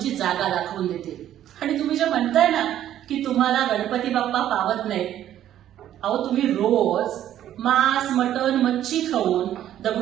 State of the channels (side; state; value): left; quieter; 11.6 dB